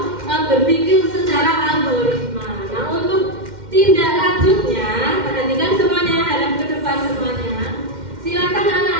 berpikir secara algoritma. Nah, untuk tindak lanjutnya, perhatikan semuanya, hadap ke depan semuanya. Silakan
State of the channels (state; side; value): late; left; 2.1 ms